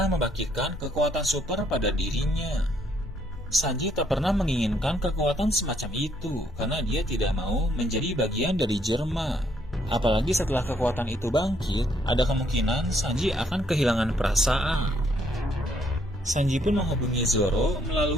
membangkitkan kekuatan super pada dirinya. Sanji tak pernah menginginkan kekuatan semacam itu karena dia tidak mau menjadi bagian dari Jerma. Apalagi setelah kekuatan itu bangkit, ada kemungkinan Sanji akan kehilangan perasaan. Sanji pun menghubungi Zoro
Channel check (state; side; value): noise; left; hum, 18 dB below the sound